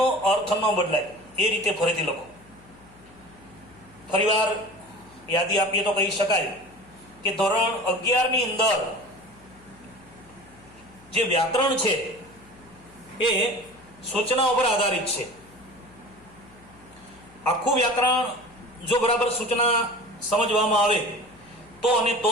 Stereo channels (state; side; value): noise; left; hum, 26 dB below the sound